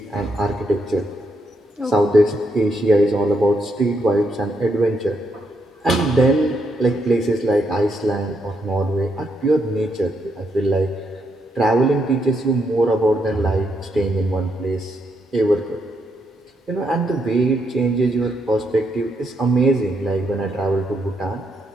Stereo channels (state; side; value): normal; both; correlation 0.78